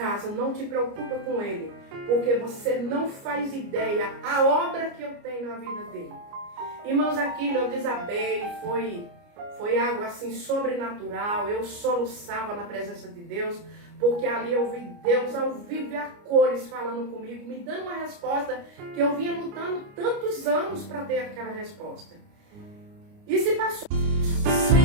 não te preocupa com ele, porque você não faz ideia a obra que eu tenho na vida dele. Irmãos, aquilo eu desabei, foi algo assim sobrenatural. Eu soluçava na presença de Deus, porque ali eu vi Deus ao vivo e a cores falando comigo, me dando uma resposta que eu vinha lutando tantos anos para ter aquela resposta. E se passou.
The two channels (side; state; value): left; late; 29 ms